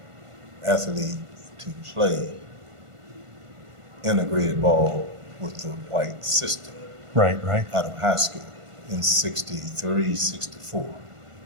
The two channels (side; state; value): left; late; 1.5 ms